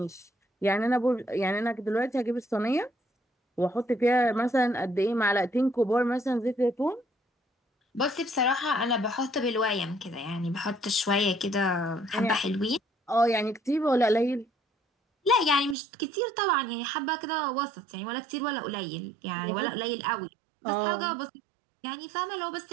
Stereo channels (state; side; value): drops out; left; at 15.8 s